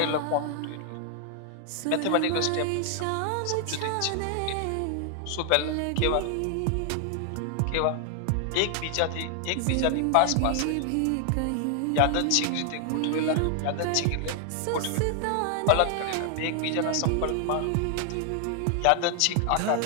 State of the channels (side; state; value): both; different; correlation 0.00